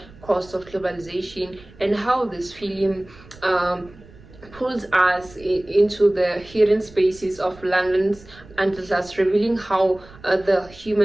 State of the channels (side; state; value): right; noise; rumble, 22 dB below the sound